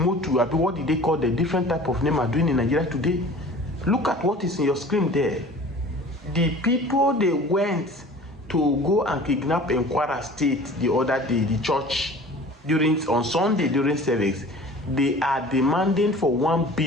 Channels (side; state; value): both; normal; correlation 0.44